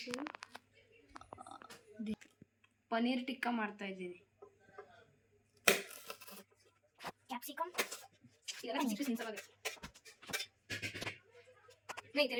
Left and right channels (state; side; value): identical; both; correlation 1.00